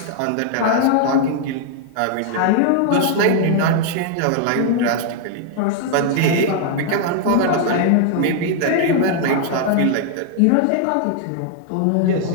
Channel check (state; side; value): different; both; correlation 0.00